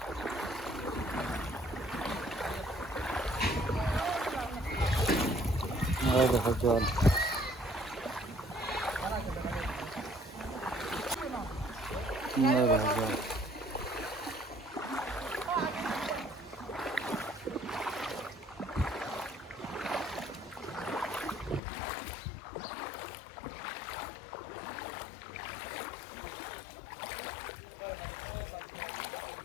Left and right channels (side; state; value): right; drops out; at 21.6 s